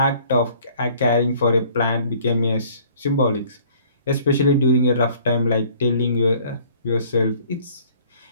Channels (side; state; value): both; inverted; correlation -0.55